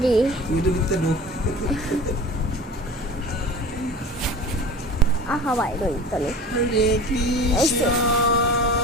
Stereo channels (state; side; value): normal; both; correlation 0.37